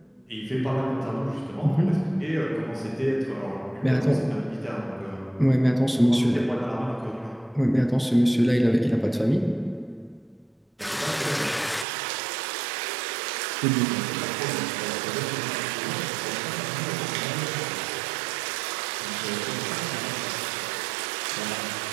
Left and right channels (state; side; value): drops out; left; at 11.9 s